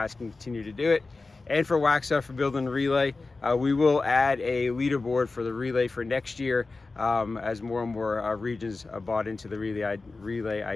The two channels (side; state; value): right; quieter; 3.7 dB